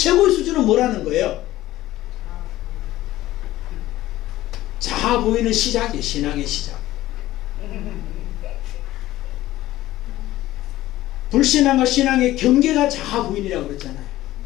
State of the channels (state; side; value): quieter; right; 15.5 dB